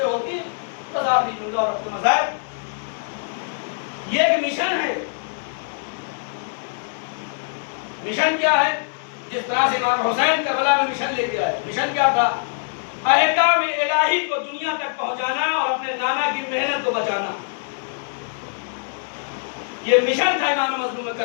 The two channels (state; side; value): silent; right; 62 dB below the other